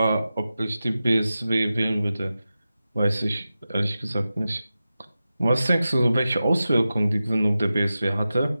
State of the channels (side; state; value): both; inverted; correlation -0.93